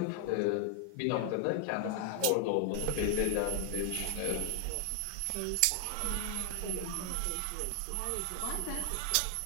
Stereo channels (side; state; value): both; different; correlation 0.00